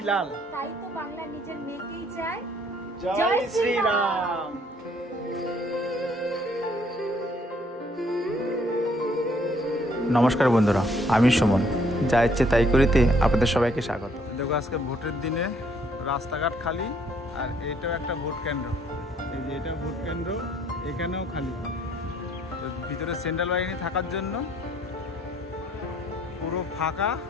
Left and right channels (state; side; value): normal; both; correlation 0.65